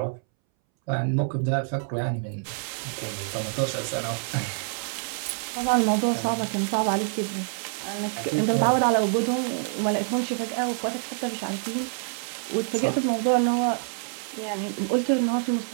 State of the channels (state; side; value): silent; left; 61 dB below the other